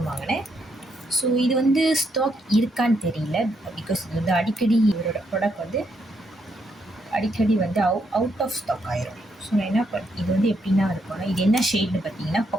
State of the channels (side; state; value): both; normal; correlation 0.77